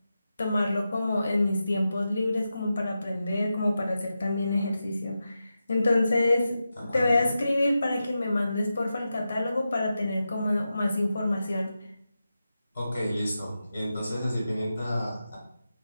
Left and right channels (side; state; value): both; inverted; correlation -0.91